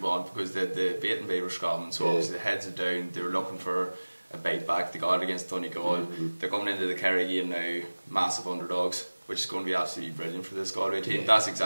want, because they beaten by Roscommon, so obviously the heads are down. They were looking for a bite back. They got it against Donegal. They're coming into the Kerry game now massive underdogs, which is going to be absolutely brilliant for this Galway team. That's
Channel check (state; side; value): inverted; both; correlation -1.00